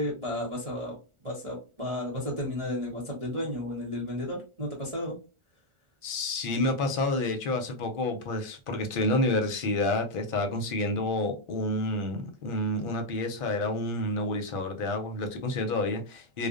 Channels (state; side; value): late; left; 1.4 ms